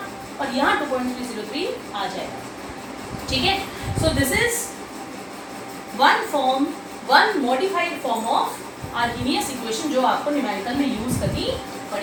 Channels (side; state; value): both; identical; correlation 1.00